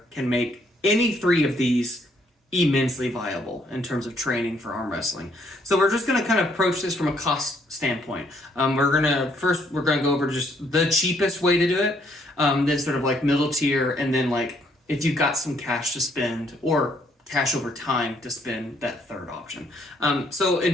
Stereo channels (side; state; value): both; normal; correlation 0.68